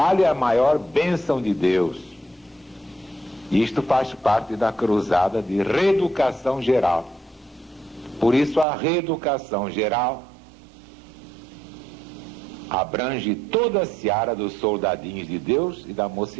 é a maior bênção de Deus. Isto faz parte da cruzada de reeducação geral. Por isso a reeducação geral abrange toda a seara dos soldadinhos de Deus e da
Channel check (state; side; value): drops out; left; at 8.7 s